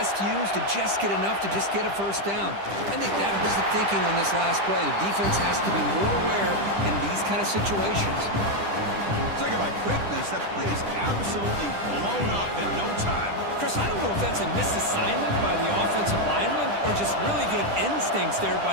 used to just get enough to just get a first down. I think that was the thinking on this last play. The defense has to be more aware in these kind of situations. Talk about quickness. That play is absolutely blown up in no time. Chris, I don't know if that's a misassignment by the offensive lineman or just really good instincts there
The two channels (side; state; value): left; late; 10 ms